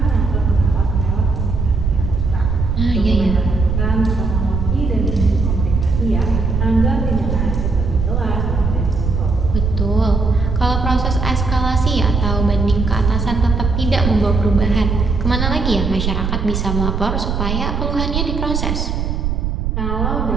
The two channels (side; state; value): right; noise; rumble, 1 dB below the sound